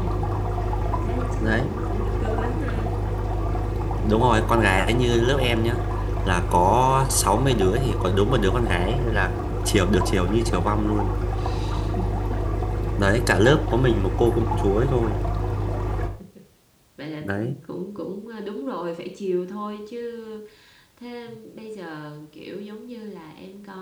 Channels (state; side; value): identical; both; correlation 1.00